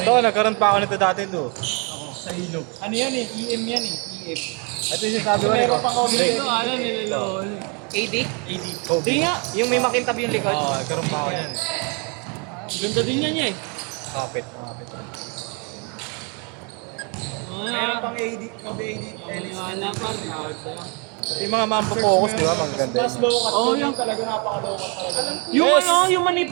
Ito, nagkaroon pa ako nito dati to. Sa ilog. Ano yan eh? EM yan eh. EM. Ito yung sinasabi ko rin. Meron pang Kobe Ito, 11. ano, nilolol. AD? Kobe. Di nga, Yung may makintab yung likod. Oo, nagkaroon pa ako yan. ganda din yan eh. Kapit. Meron pang AD, Kobe AD. Wala pa, tawag sa'yo. Yung mga mampo-focus, di ba? Magaganda Mas yun. low cut. Oo, Yung yung- talaga napaka-low cut talaga. Yung ano, yung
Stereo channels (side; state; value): left; quieter; 34.1 dB